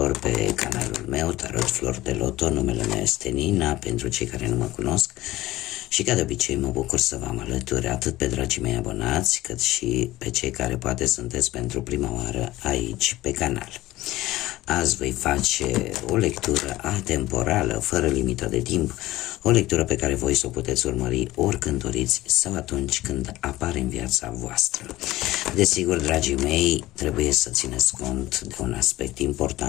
pe canalul meu, Tarot Flor de Loto. Numele meu este Nina, pentru cei care nu mă cunosc. Și ca de obicei mă bucur să vă am alături atât pe dragii mei abonați, cât și pe cei care poate sunteți pentru prima oară aici pe canal. Azi voi face o lectură atemporală, fără limită de timp, o lectură pe care voi să o puteți urmări oricând doriți sau atunci când apare în viața voastră. Desigur, dragii mei, trebuie să țineți cont de un aspect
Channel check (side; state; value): right; quieter; 17.1 dB